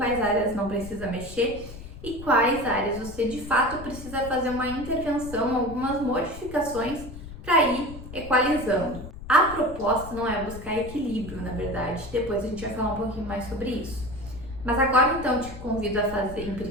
áreas não precisa mexer e quais áreas você de fato precisa fazer uma intervenção, algumas modificações para ir equalizando. A proposta não é buscar equilíbrio, na verdade, depois a gente vai falar um pouquinho mais sobre isso. Mas agora então eu te convido a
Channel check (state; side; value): noise; left; rumble, 13 dB below the sound